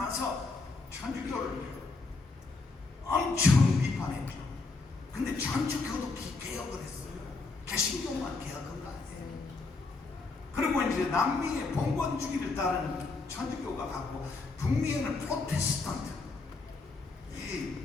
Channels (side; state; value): right; quieter; 3.8 dB